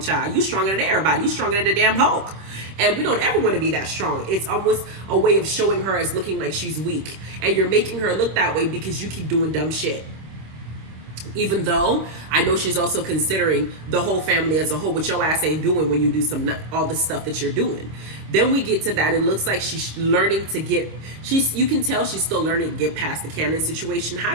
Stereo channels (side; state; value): left; late; 26 ms